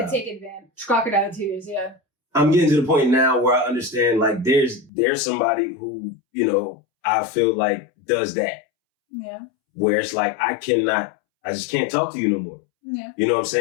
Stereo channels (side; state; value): right; drops out; at 4.9 s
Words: could take advantage. Crocodile tears, yeah. I'm getting to the point now where I understand, like, there's somebody who, you know, I feel like does that. Yeah. Where it's like, I just can't talk to you no more. Yeah. You know what I'm